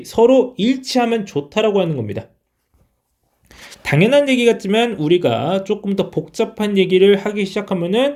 서로 일치하면 좋다라고 하는 겁니다. 당연한 얘기 같지만 우리가 조금 더 복잡한 얘기를 하기 시작하면은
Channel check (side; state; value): both; identical; correlation 1.00